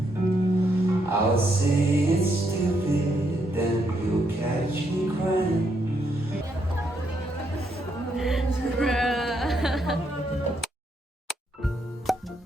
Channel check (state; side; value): normal; both; correlation 0.77